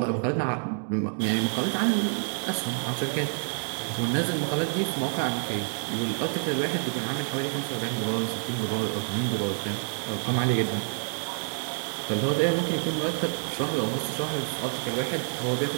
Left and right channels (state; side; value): silent; left; digital silence